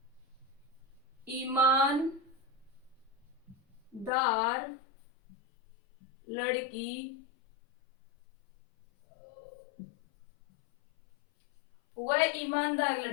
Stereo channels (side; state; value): right; drops out; at 4.1 s